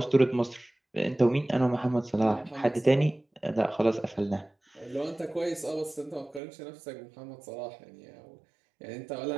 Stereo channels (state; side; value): drops out; left; at 6.4 s